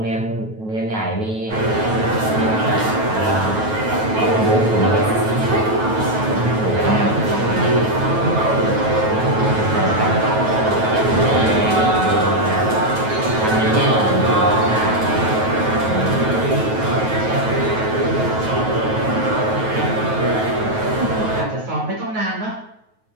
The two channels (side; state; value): left; late; 9.3 ms